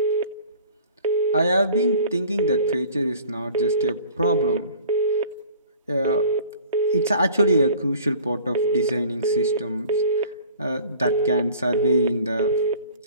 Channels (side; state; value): both; inverted; correlation -0.48